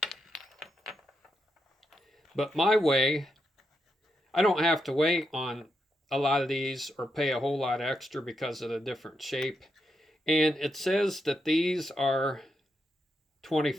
But my way, I don't have to wait on a lot of these or pay a whole lot extra because of the different shape. And it says that these are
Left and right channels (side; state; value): both; normal; correlation 0.83